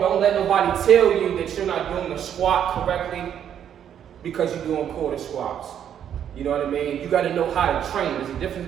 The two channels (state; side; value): quieter; left; 9.3 dB